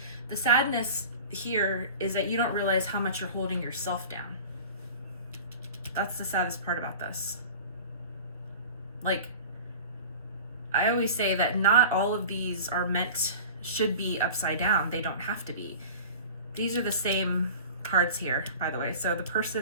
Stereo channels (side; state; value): both; inverted; correlation -0.37